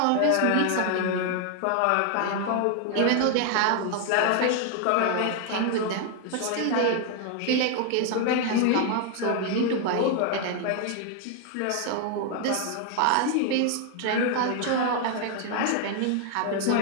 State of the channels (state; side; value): different; both; correlation 0.00